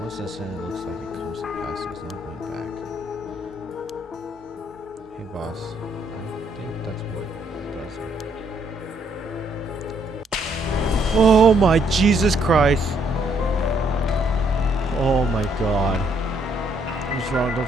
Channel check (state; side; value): normal; both; correlation 0.70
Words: Once instant, it looks like it comes to pass. It's not going back. Hey boss, I think that's what it does. Oh my Jesus Christ! Oh my god. What's wrong? Don't